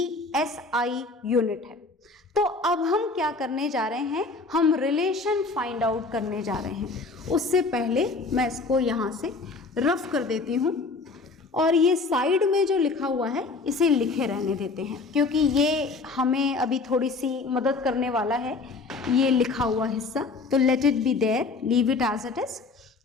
एसआई यूनिट है। तो अब हम क्या करने जा रहे हैं? हम रिलेशन फाइंड आउट करने जा रहे हैं। उससे पहले मैं इसको यहाँ से रफ कर देती हूँ, और ये साइड में जो लिखा हुआ है इसे लिखे रहने देते हैं, क्योंकि ये हमें अभी थोड़ी सी मदद करने वाला है ये लिखा हुआ हिस्सा। तो let it be there, leave it as it is.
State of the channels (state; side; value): quieter; right; 3.9 dB